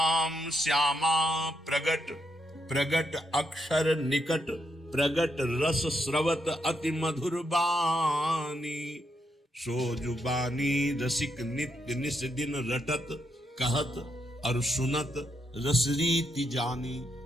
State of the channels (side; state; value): both; normal; correlation 0.80